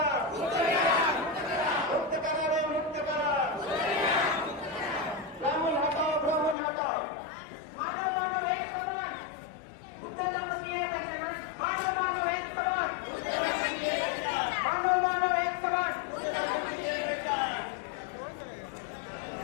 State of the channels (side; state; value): right; drops out; at 6.6 s